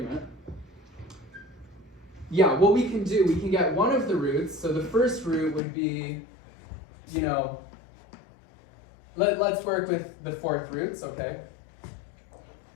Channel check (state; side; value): drops out; right; at 5.6 s